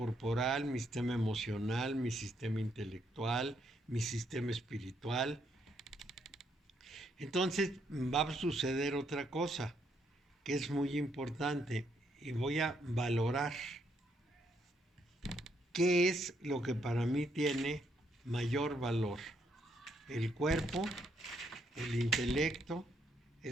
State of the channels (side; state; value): both; normal; correlation 0.74